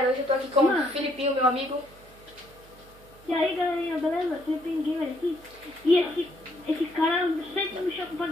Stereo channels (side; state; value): right; noise; hum, 25 dB below the sound